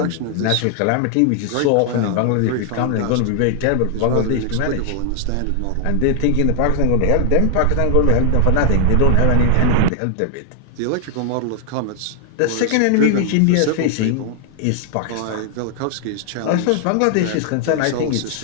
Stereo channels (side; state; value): both; different; correlation 0.00